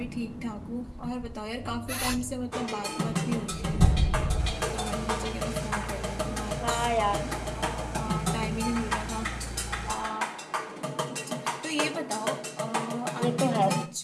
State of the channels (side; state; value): both; identical; correlation 1.00